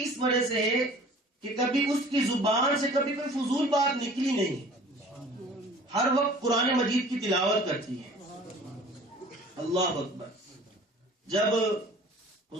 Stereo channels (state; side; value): normal; both; correlation 0.48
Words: اس وجہ سے ہے کہ کبھی اس کی زبان سے کبھی کوئی فضول بات نکلی نہیں، ہر وقت قرآن مجید کی تلاوت کرتی ہے۔ اللہ اکبر۔ جب